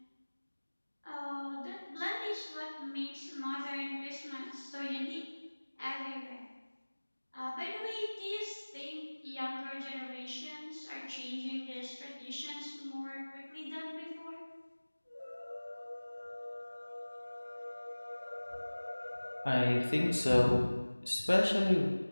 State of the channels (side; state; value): both; inverted; correlation -1.00